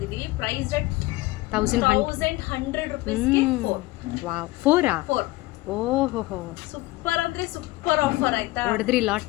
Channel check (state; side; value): quieter; right; 19.7 dB